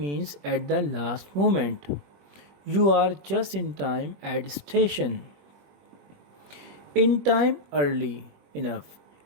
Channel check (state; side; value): late; left; 21 ms